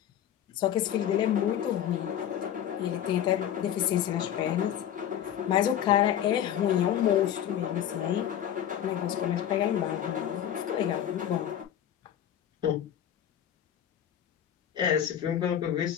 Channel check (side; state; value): right; quieter; 10.3 dB